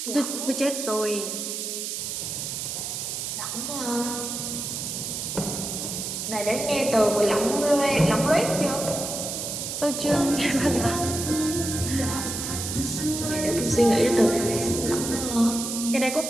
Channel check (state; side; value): noise; right; hiss, 4 dB below the sound